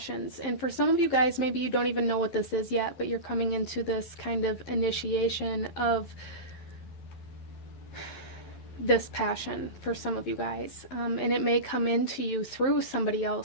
And for some of you guys, maybe you don't even know what this is yet, but you're coming into this kind of initiation of this passion for some of you guys, and it may come into you through somebody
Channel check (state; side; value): late; right; 11 ms